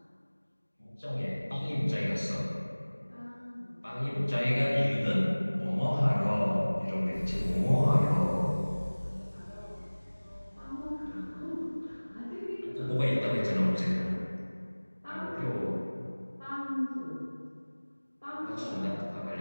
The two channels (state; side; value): inverted; both; correlation -1.00